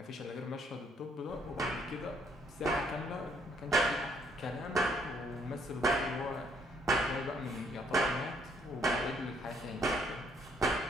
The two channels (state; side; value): normal; both; correlation 0.67